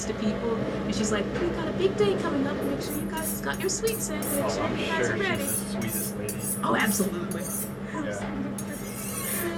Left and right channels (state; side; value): identical; both; correlation 1.00